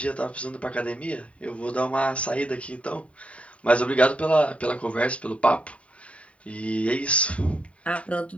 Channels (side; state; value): right; late; 0.064 ms